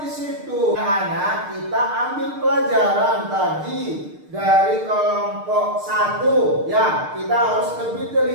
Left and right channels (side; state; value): left; late; 6.6 ms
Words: di situ. Anak, kita ambil pelajaran tadi dari kelompok 1 ya, kita harus lebih